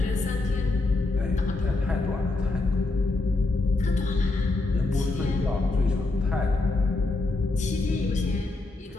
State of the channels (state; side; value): quieter; right; 3.2 dB